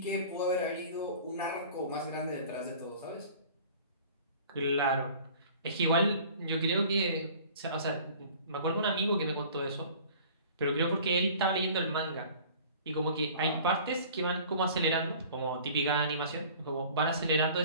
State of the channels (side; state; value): both; inverted; correlation -0.47